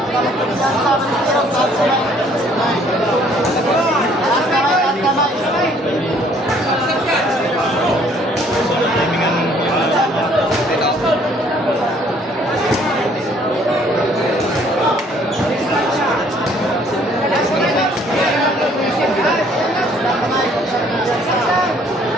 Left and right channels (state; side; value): normal; both; correlation 0.61